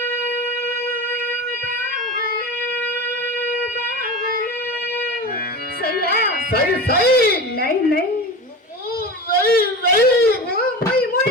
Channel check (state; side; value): normal; both; correlation 0.29